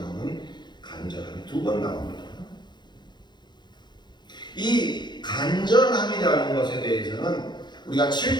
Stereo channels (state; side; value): late; right; 0.21 ms